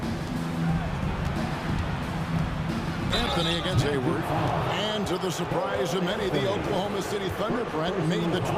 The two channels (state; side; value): identical; both; correlation 1.00